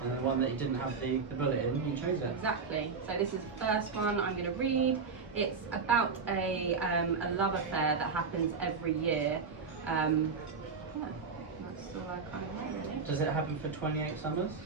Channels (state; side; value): quieter; left; 5.1 dB